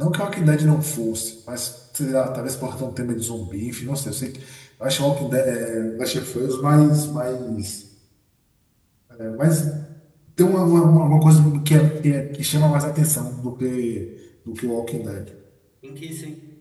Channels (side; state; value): both; identical; correlation 1.00